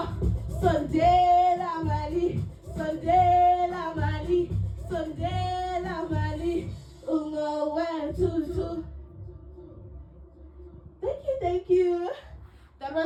Sondela Mali. Sondela Mali. Sondela Mali. Ungowe tutu. Thank you. That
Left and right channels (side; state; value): both; identical; correlation 1.00